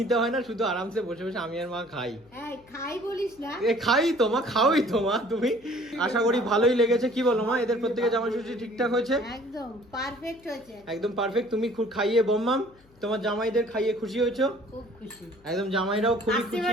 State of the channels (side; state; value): left; noise; hum, 29 dB below the sound